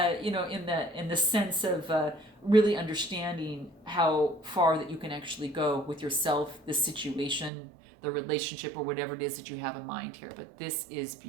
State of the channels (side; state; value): left; drops out; at 7.5 s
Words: the sense of really understanding how far that you can actually go with yourself, the situation, the relationship or whatever it is that you have in mind here. But this is